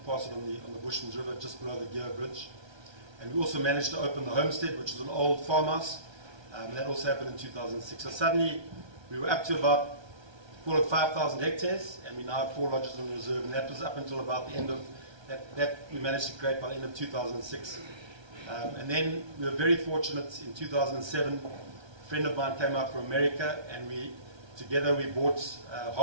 pass it on the Bushman's River, just below the Gear Bridge. And we also managed to open the Homestead, which is an old farmhouse. That also happened in 2006. So suddenly we were up to about, call it 5,000 hectares, and we now have 4 lodges on the reserve. And that was up until about the end of, that we managed to create by the end of 2006. And then we were very fortunate in 2007, a friend of mine came out from America, and together we bought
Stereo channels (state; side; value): late; left; 1.3 ms